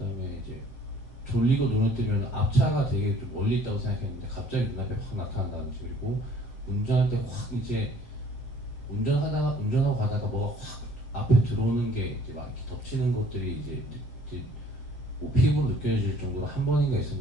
다음에 이제 졸리고 눈을 뜨면 앞차가 되게 좀 멀리 있다고 생각했는데 갑자기 눈앞에 확 나타난다든지 그리고 운전할 때 확 이제 운전하고 가다가 뭐가 확 앞에 들어오는 게 이제 막 이렇게 덮치는 것들이 이제 뭐 피부로 느껴질 정도로 한 번인가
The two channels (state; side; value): late; right; 7.6 ms